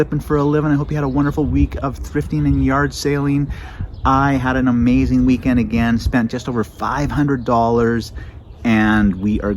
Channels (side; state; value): both; identical; correlation 1.00